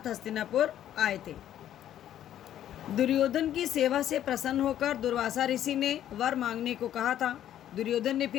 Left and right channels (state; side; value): quieter; right; 11.3 dB